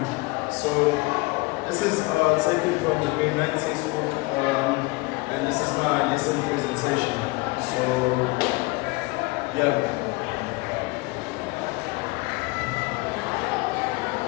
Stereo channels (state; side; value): quieter; right; 24.3 dB